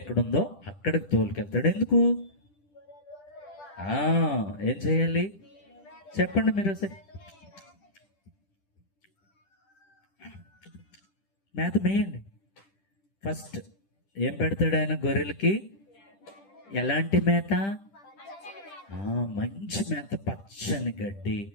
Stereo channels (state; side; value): late; right; 10 ms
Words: అక్కడికి తోలుకెళ్తాడు. ఎందుకు? ఏం చేయాలి చెప్పండి మీరు ఒకసారి. మేత మేయండి. ఫస్ట్ ఏం పెడతాడు ఆయన గొర్రెలకి? ఎలాంటి మేత? మంచి మేత, పచ్చని గడ్డి,